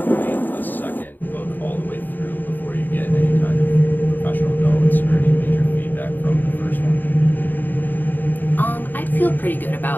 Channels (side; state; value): right; late; 0.090 ms